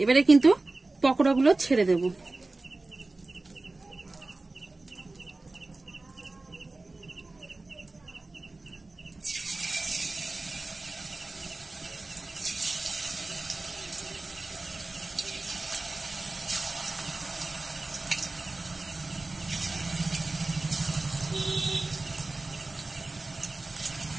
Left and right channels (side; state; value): left; quieter; 3.2 dB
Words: এবারে কিন্তু পকোড়াগুলো ছেড়ে দেব।